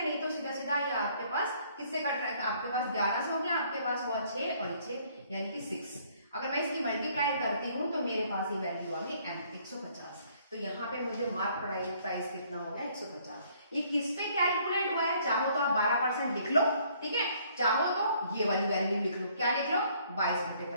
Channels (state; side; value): inverted; both; correlation -0.63